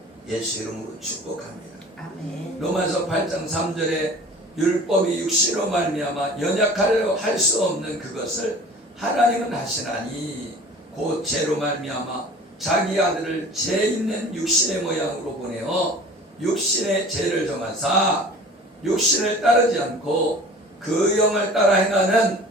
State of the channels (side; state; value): both; normal; correlation 0.43